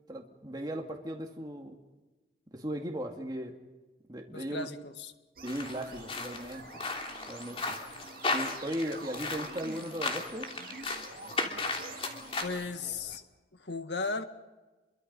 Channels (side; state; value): both; normal; correlation 0.16